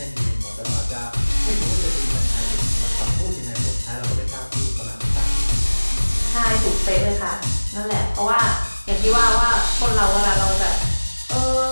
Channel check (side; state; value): both; inverted; correlation -1.00